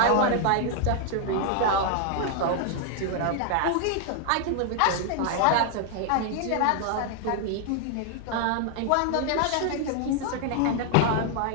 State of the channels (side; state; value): both; different; correlation 0.00